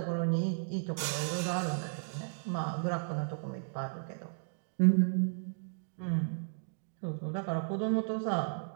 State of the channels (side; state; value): left; silent; digital silence